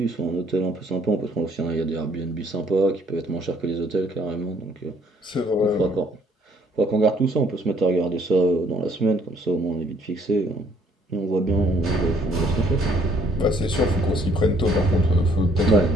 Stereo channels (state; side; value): normal; both; correlation 0.64